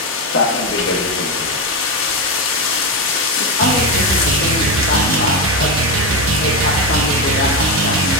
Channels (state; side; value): normal; both; correlation 0.12